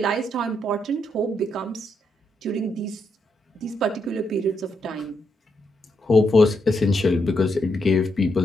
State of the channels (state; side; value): normal; both; correlation 0.80